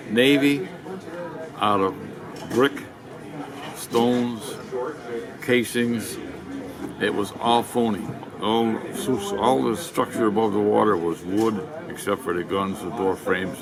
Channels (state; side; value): identical; both; correlation 1.00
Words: Navy out of brick, stones, casings. It was all phony. All the structure above the water was wood, except for the guns, the door frames,